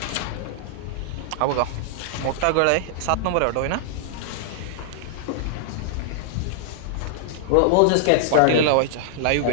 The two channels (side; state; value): both; different; correlation -0.01